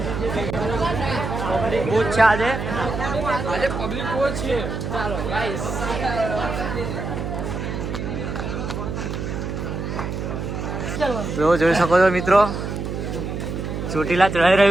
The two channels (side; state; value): right; noise; hum, 4 dB below the sound